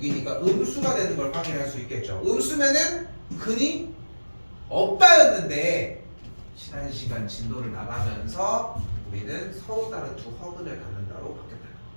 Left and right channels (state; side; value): inverted; both; correlation -1.00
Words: 음수가 되는 걸 확인할 수 있겠죠. 음수면은 근이 없다였는데 지난 시간 진도를 나가면서 우리는 서로 다른 두 허근을 갖는다로 바뀌었다.